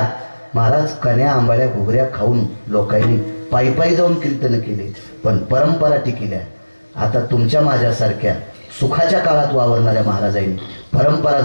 महाराज कन्या आंबाड्या घुगऱ्या खाऊन लोकांनी पायी जाऊन कीर्तन केले, पण परंपरा टिकल्या. आता तुमच्या माझ्यासारख्या सुखाच्या काळात वावरणाऱ्या महाराजांनी परंपरा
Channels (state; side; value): inverted; both; correlation -1.00